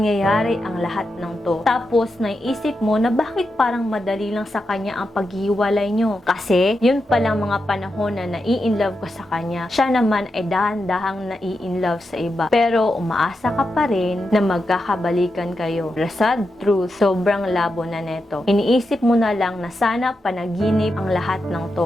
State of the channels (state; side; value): normal; both; correlation 0.87